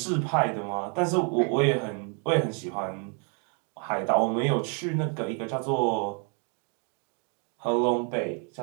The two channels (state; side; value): quieter; left; 38.4 dB